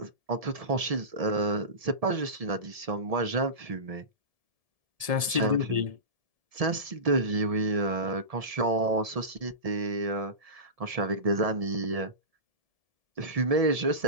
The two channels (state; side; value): late; left; 1.7 ms